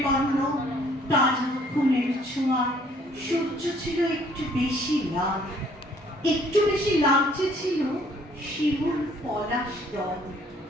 তাজা খুনের ছোঁয়ায় সূর্য ছিল একটু বেশি লাল, একটু বেশি লালচে ছিল শিমুল পলাশ দল।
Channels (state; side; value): normal; both; correlation 0.61